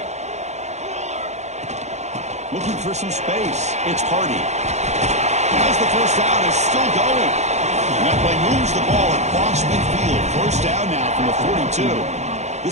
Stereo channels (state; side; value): late; left; 0.33 ms